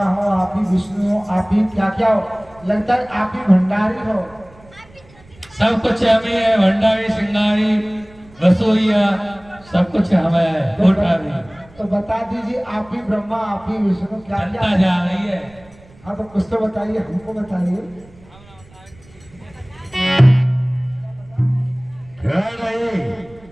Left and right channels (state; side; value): noise; right; rumble, 26 dB below the sound